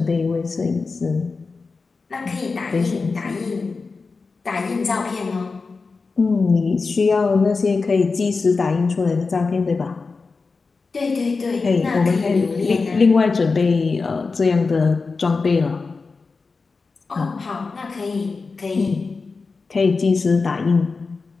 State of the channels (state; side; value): quieter; right; 4.3 dB